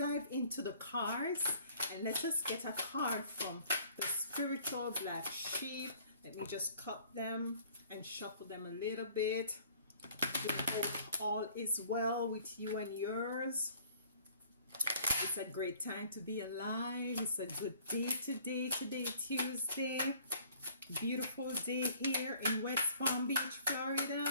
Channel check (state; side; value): inverted; both; correlation -0.55